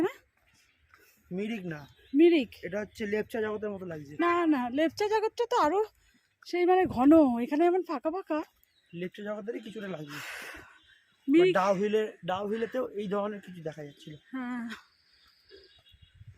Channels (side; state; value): both; identical; correlation 1.00